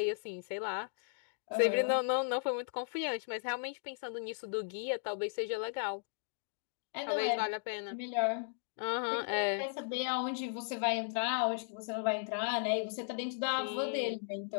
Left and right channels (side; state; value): right; silent; digital silence